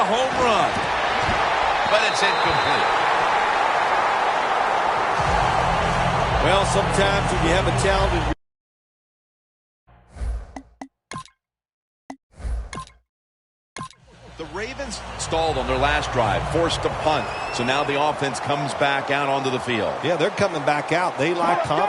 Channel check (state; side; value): identical; both; correlation 1.00